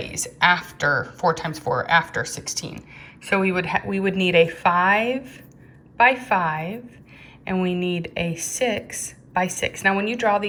after 4 times 4, after 16. So we would need a 5 by 5, and we need a 6 by 6. Now when you draw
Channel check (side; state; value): both; identical; correlation 1.00